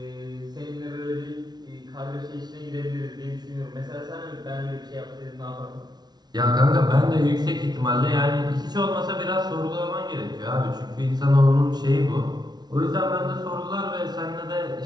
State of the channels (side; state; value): left; late; 0.20 ms